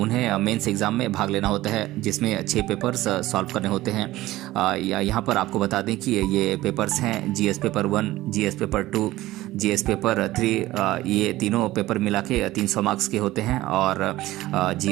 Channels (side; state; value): left; quieter; 16.8 dB